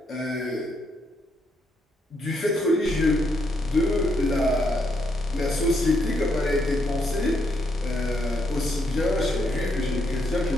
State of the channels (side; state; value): both; normal; correlation 0.77